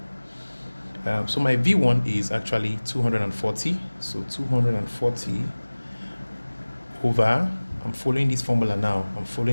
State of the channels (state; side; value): inverted; both; correlation -1.00